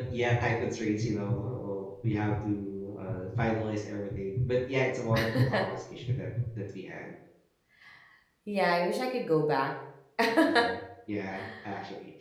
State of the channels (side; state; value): both; identical; correlation 1.00